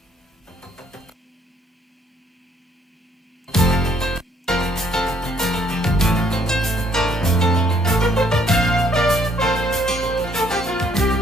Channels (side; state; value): both; normal; correlation 0.65